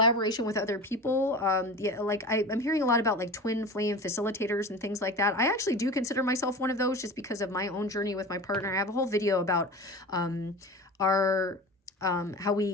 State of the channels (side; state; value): both; normal; correlation 0.33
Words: with other people. Yeah, like I'm hearing a lot about like twin flame facilitators and things like that. I actually do consider myself one of those just because of my own journey with my partner. I have a whole video about our how